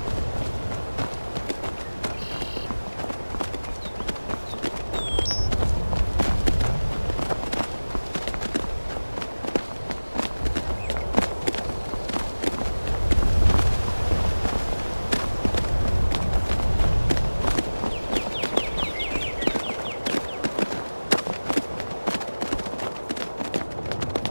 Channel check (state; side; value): inverted; both; correlation -1.00